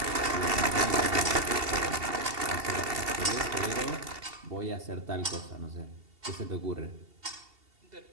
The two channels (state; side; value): late; left; 2.7 ms